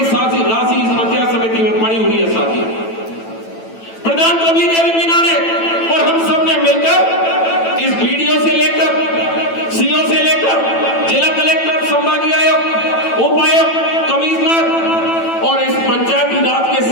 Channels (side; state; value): right; late; 9.0 ms